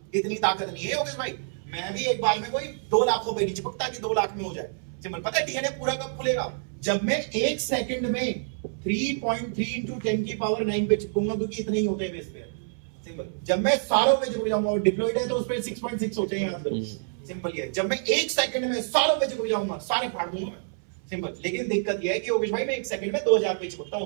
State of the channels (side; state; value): left; silent; 60 dB below the other